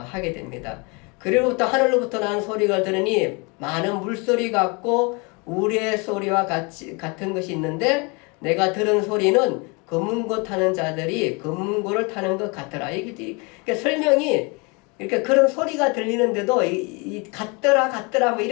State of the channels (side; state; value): right; quieter; 30.0 dB